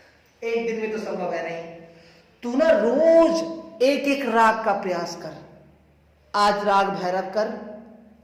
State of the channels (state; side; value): identical; both; correlation 1.00